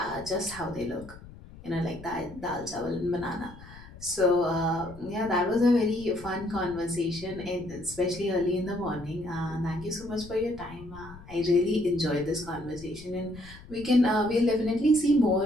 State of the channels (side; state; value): left; noise; rumble, 18 dB below the sound